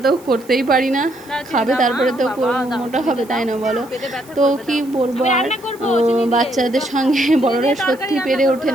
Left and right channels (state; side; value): noise; right; hiss, 24 dB below the sound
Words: তো করতেই পারি না, খাবে তারপরে তো মোটা হবে, তাই না বলো? তো কি বলবো আর, বাচ্চাদের সঙ্গে বড়রা সত্যি পেরে ওঠে